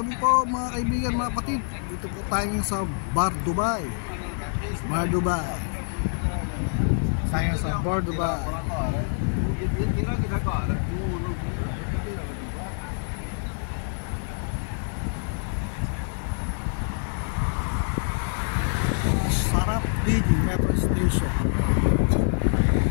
po mga kaibigan, mga kapatid. Dito po tayo sa Bar Dubai. Bar Dubai. Tayo sa Bar Dubai. Sarap Big Metro Station.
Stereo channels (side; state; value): right; silent; digital silence